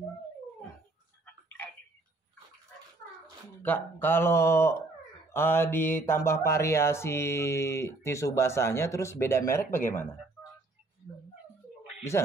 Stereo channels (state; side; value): quieter; left; 3.1 dB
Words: Edit. Kak, kalau ditambah variasi tisu basahnya terus beda merek bagaimana? Bisa?